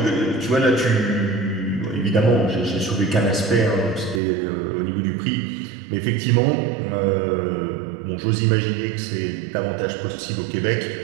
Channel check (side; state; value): left; drops out; at 4.2 s